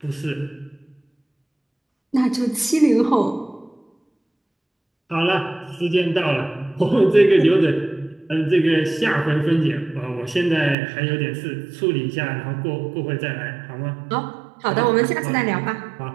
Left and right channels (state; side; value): drops out; left; at 10.8 s